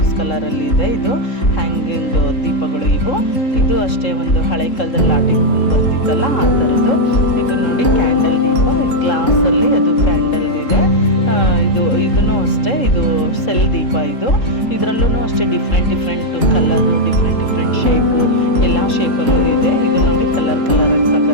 ಕಲರಲ್ಲಿದೆ. ಇದು ಹ್ಯಾಂಗಿಂಗ್ ದೀಪಗಳು ಇದು ಅಷ್ಟೇ ಒಂದು ಹಳೆ ಕಾಲದಲ್ಲಿ ಲಾಟಿಂಗ್ ಬರ್ತಿತ್ತಲ್ಲ ಆ ಥರದ್ದು. ಇದು ನೋಡಿ ಕ್ಯಾಂಡಲ್ ದೀಪ, ಗ್ಲಾಸಲ್ಲಿ ಅದು ಕ್ಯಾಂಡಲ್ ಇದೆ. ಇದೂ ಅಷ್ಟೇ, ಇದು ಸೆಲ್ ದೀಪ. ಇದರಲ್ಲೂ ಅಷ್ಟೇ ಡಿಫ್ರೆಂಟ್ ಕಲರು, ಡಿಫ್ರೆಂಟ್ ಶೇಪು, ಎಲ್ಲ ಶೇಪಲ್ಲೂ ಇದೆ. ಇದು ನೋಡಿ ಕಲರ್ ಆಗಿ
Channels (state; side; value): late; right; 3.7 ms